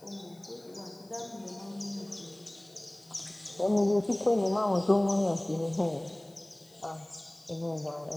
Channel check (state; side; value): noise; left; hiss, 28 dB below the sound